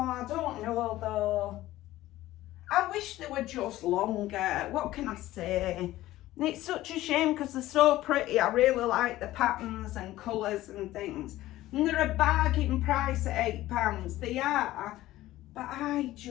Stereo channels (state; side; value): quieter; right; 15.8 dB